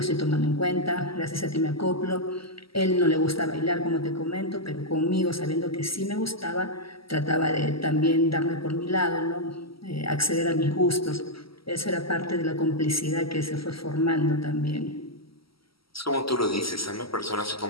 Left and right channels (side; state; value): right; late; 0.75 ms